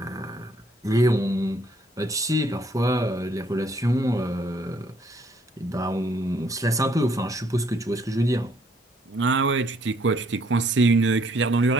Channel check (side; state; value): both; normal; correlation 0.66